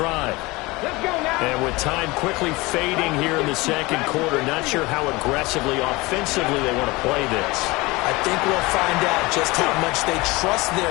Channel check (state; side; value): quieter; right; 22.7 dB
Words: Let's go now. And with time quickly fading here in the second quarter, not sure how aggressively, offensively they want to play this. I think we'll find out just how much they trust